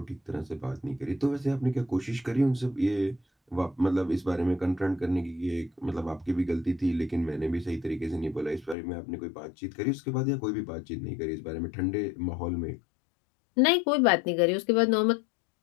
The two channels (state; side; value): drops out; right; at 8.8 s